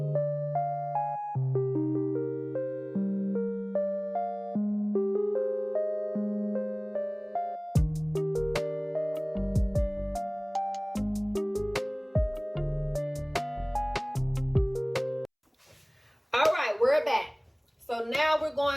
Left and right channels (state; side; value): identical; both; correlation 1.00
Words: We're back. So now we're